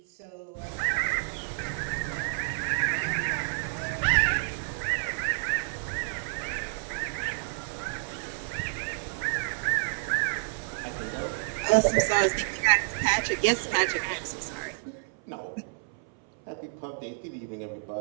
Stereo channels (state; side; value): silent; left; 58 dB below the other